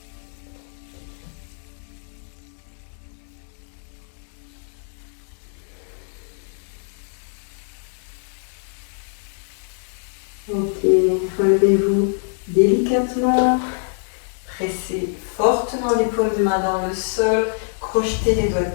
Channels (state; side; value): silent; right; digital silence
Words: Ok, relevez-vous délicatement, pressez fortement les paumes de main dans le sol, crochetez les doigts de